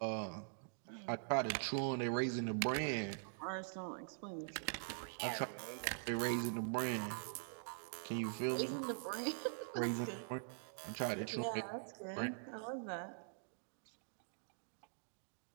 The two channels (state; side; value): silent; left; digital silence